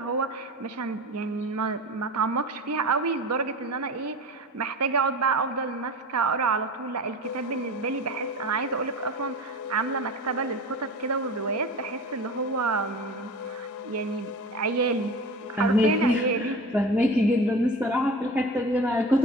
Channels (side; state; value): both; normal; correlation 0.33